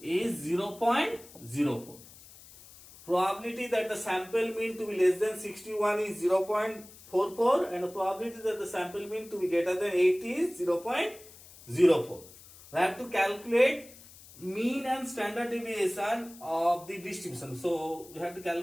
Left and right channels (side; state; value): left; noise; hiss, 20 dB below the sound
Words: is 0.04. Probability that the sample mean to be less than 61 is 0.44, and the probability that the sample mean to be greater than 80 is 0.04. We have to calculate mean and standard deviation of the distribution. So we have to